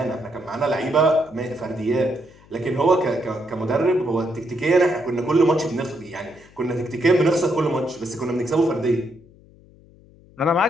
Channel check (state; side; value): noise; left; hum, 26 dB below the sound